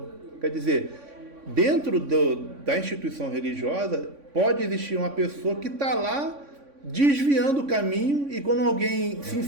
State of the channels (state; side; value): late; left; 3.5 ms